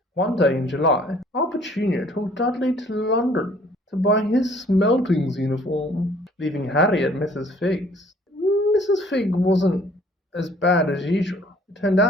One day in July, Aunt Petunia took Dudley to London to buy his Smeltings uniform, leaving Harry at Mrs. Fig's. Mrs. Fig wasn't as bad as usual. It turned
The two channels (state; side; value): normal; both; correlation 0.57